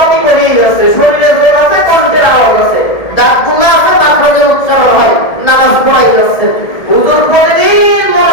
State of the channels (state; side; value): late; right; 1.8 ms